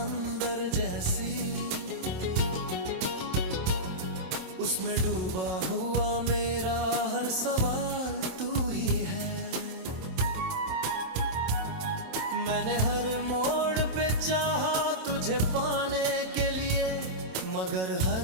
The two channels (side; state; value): left; late; 27 ms